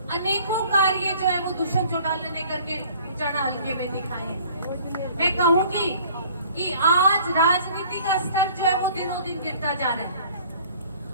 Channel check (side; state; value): both; inverted; correlation -0.52